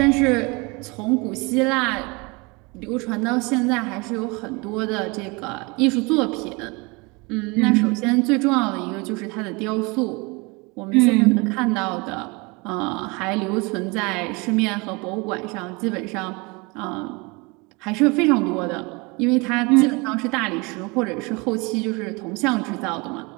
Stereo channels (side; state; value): left; quieter; 27.4 dB